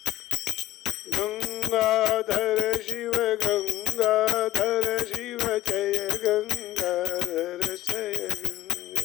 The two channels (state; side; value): quieter; right; 15.5 dB